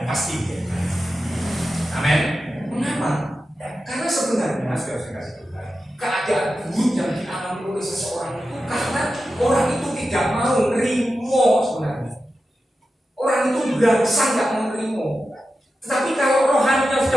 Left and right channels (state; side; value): normal; both; correlation 0.91